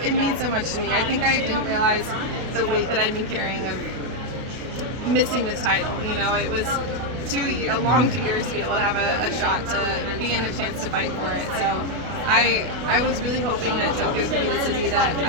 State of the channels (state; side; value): late; left; 32 ms